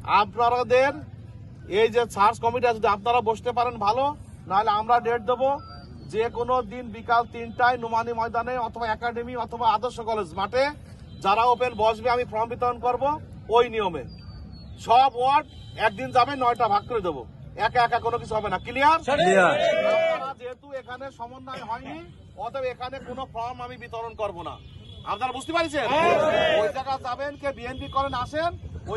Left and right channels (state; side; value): identical; both; correlation 1.00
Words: আপনাদের এই যে সার্চ কমিটি যদি আপনারা বসতে পারেন ভালো, নাহলে আমরা ডেট দেবো যে কোনো দিন বিকাল 3টায় নোমানী ময়দানে অথবা একাডেমি অথবা আদর্শ কলেজ মাঠে যারা ওপেন বসবে আমি ফর্ম বিতরণ করব। ওই নিয়মে সব ওয়ার্ড একদিন যাবে, 9টা ভাগ করে দেবো, একা একা কোনো কিছু হবে না। ক্লিয়ার? যেহেতু এখানে সমন্বয় হয়নি, অতএব এখানে কোনো ফর্ম আমি বিতরণ করব না। আপনারা বুঝতে পারছেন? ওই জায়গা যাবেন, কে বিএনপি করেন আসেন,